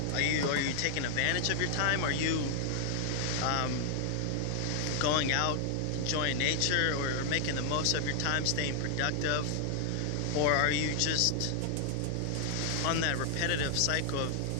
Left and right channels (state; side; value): different; both; correlation 0.00